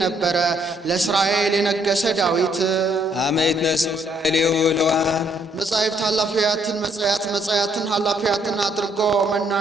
ነበረ። ለእስራኤል የነገሰ ዳዊት አመይት ነሱ ሌው ለዋን መጻሕፍት ኃላፊያትን መጻያትን ኃላፊያትን አድርጎ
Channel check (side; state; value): both; normal; correlation 0.69